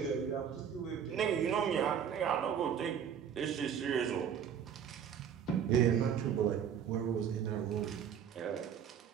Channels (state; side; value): quieter; left; 8.2 dB